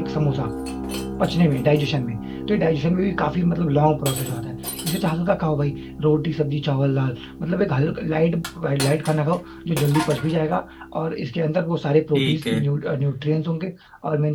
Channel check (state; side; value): identical; both; correlation 1.00